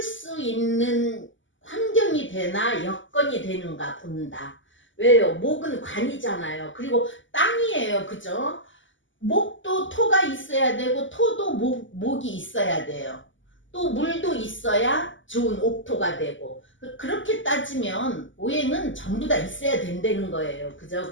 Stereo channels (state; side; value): late; right; 0.55 ms